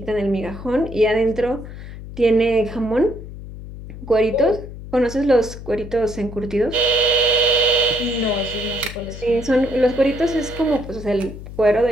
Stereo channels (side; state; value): left; noise; hum, 12 dB below the sound